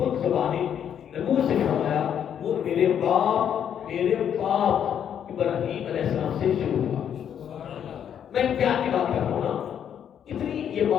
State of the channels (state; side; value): quieter; right; 8.9 dB